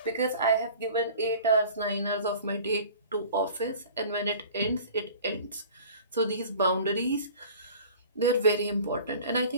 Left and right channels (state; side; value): inverted; both; correlation -0.44